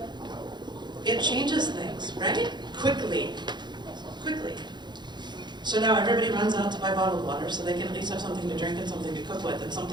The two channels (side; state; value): left; late; 0.21 ms